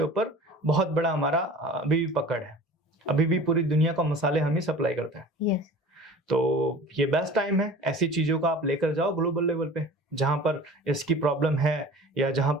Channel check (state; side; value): normal; both; correlation 0.41